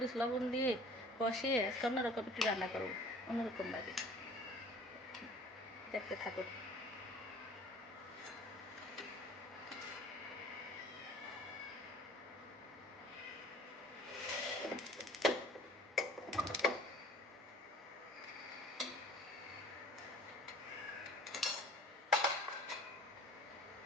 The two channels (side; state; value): both; normal; correlation 0.48